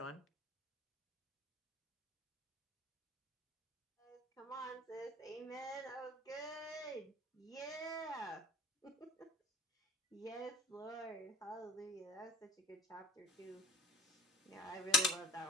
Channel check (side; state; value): both; normal; correlation 0.44